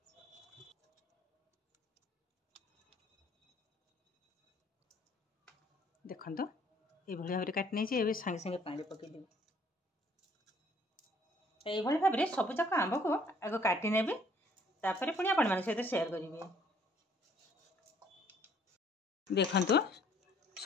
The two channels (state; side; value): normal; both; correlation 0.61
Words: देखंतु ए भली भाबरे काट नै छै। एबे संगे संगे पानी पके देबे। ए भली भाबरे सब जक आंब को आगो काटी नेबे तापरे पुनी आपण मान सहित शेयर करिवे। देखंतु